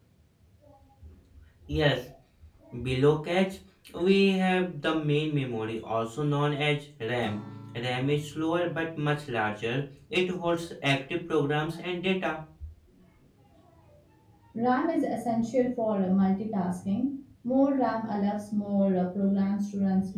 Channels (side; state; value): both; identical; correlation 1.00